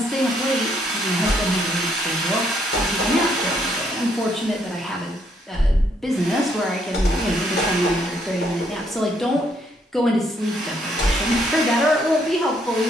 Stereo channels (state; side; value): normal; both; correlation 0.71